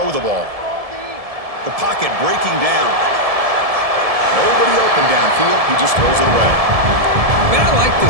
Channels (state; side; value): late; left; 1.7 ms